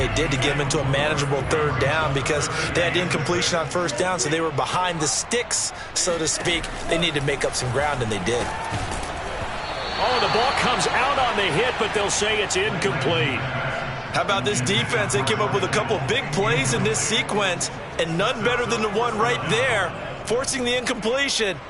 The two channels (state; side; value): identical; both; correlation 1.00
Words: did to get them into a manageable third down because they had incompletion on first down, so they were behind the sticks, so to speak. They needed to make up some ground, and they did. Oh, the ball comes out on the hit, but they'll say it's incomplete. How about this defense? They came up with a couple big plays in this sequence, and none better than the one right there, forcing the incompletion